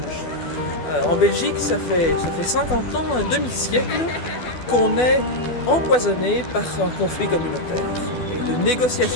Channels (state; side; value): late; right; 12 ms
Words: En Belgique, ça fait 50 ans, un demi-siècle, qu'on est empoisonné par un conflit communautaire. Et de